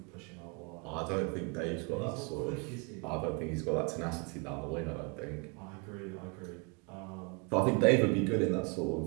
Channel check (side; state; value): left; quieter; 32.5 dB